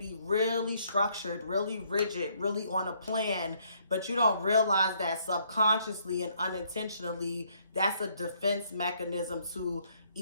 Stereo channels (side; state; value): both; inverted; correlation -0.68